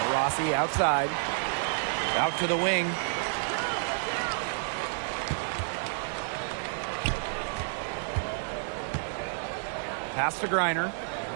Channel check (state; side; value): silent; left; digital silence